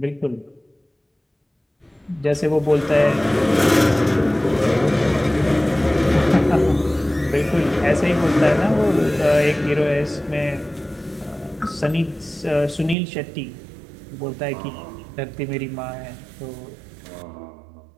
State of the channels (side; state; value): left; drops out; at 13.0 s